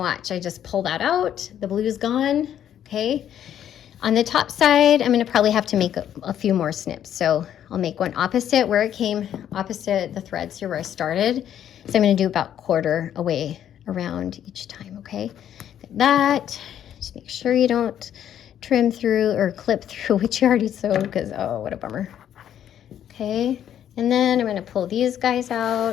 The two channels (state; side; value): quieter; right; 10.2 dB